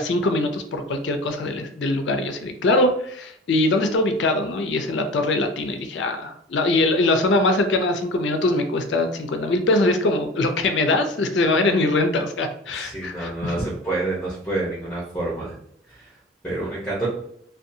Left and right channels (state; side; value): normal; both; correlation 0.36